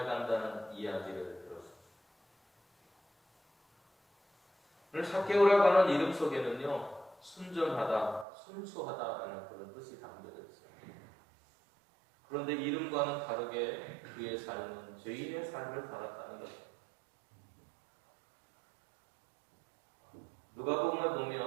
이야기를 들었습니다. 오늘 삭개오라고 하는 이름 속에는요, 순전하다, 순수하다라는 그런 뜻이 담겨져 있어요. 그런데 이름과는 다르게 그의 삶은 죄인의 삶을 살았다는 것입니다. 누가복음을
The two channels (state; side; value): drops out; left; at 8.2 s